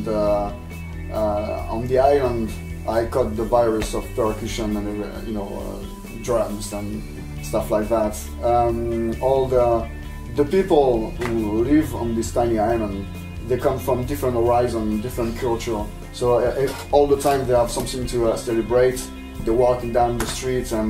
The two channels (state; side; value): identical; both; correlation 1.00